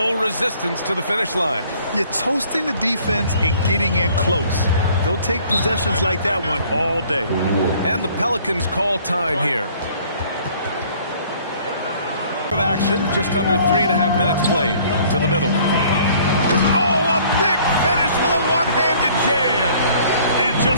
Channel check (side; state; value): both; inverted; correlation -0.56